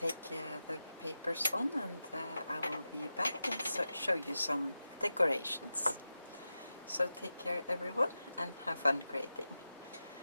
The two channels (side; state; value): both; inverted; correlation -0.92